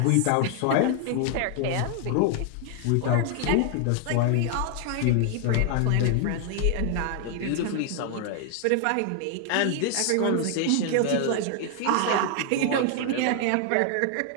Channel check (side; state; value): both; different; correlation 0.00